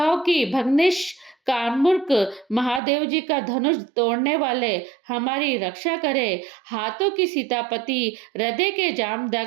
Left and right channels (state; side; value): drops out; left; at 2.8 s